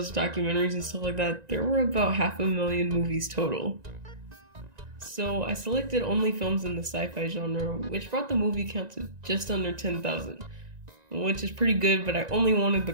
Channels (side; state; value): left; late; 1.9 ms